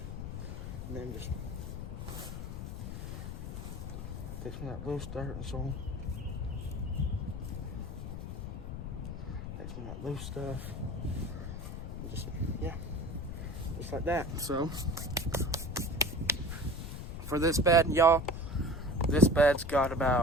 and then just take some of that loose dirt and soil. Take some of that loose stuff. And just, yeah, just like that. So, for this bed, y'all, this bed's got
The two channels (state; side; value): noise; left; rumble, 7 dB below the sound